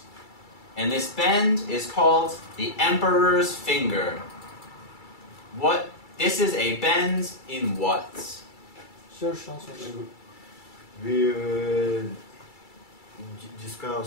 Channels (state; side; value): late; right; 2.3 ms